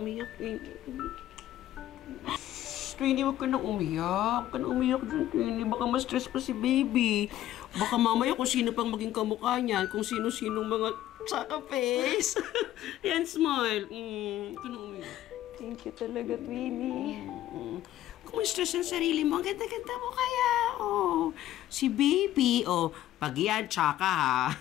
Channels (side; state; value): right; quieter; 13.4 dB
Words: Twinnie. Twinnie, huwag ka nang umiyak. Huwag ka nang umiyak dyan, Twinnie. Baka ma-stress pa si baby. Baka mamaya kung sino pang maging kamukha niyan, kung sino-sinong mga tsaka face. Yan, smile. Huwag ka nang umiyak. Thank you talaga, Twinnie. Kung ma-stress ang sarili mo, ang ganda-ganda mo kaya. Oh, si baby. Oh, pag yan, tsaka ha.